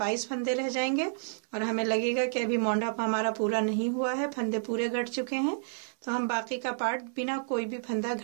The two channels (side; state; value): left; silent; digital silence